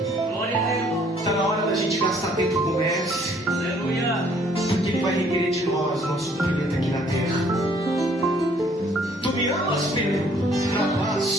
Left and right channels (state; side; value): normal; both; correlation 0.62